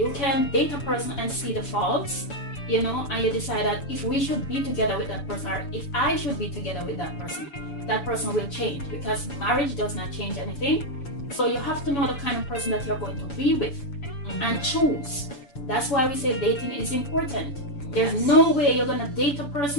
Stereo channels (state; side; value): late; right; 7.0 ms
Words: can date a person and see the faults, and you decide that if we should be together with that person, or if I should be together with that person will change, because marriage does not change anything. So you have to know the kind of person that you're going to be with and choose. That's why we say dating is important. There's no way you're gonna date a